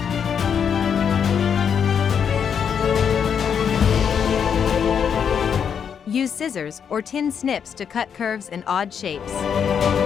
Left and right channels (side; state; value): right; quieter; 7.5 dB